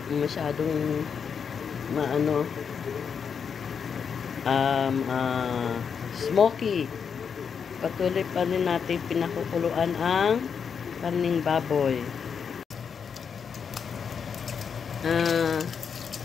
masyadong smoky. Patuloy pa rin natin pinakukuluan ang karning baboy.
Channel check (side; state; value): right; quieter; 6.6 dB